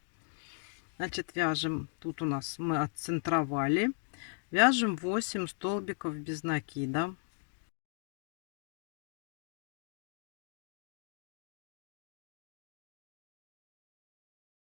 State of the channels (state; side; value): silent; right; digital silence